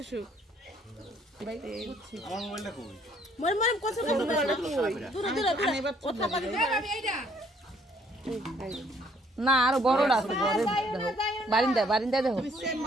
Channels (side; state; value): both; normal; correlation 0.64